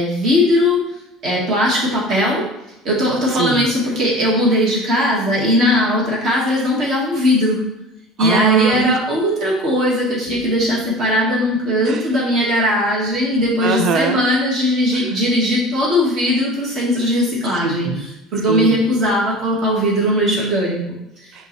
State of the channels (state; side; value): normal; both; correlation 0.38